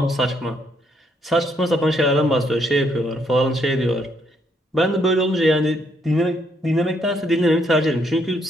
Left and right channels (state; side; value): normal; both; correlation 0.72